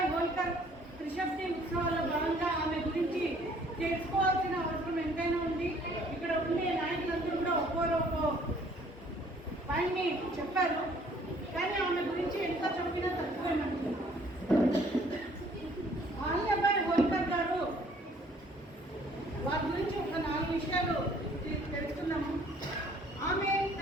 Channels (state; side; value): normal; both; correlation 0.59